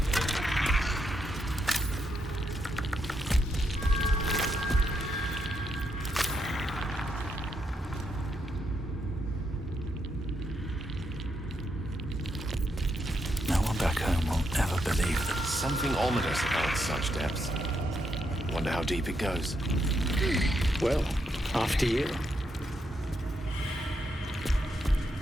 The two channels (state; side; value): normal; both; correlation 0.79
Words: Back home will ever believe that. Something ominous about such depths. Wonder how deep it goes. Well, after you.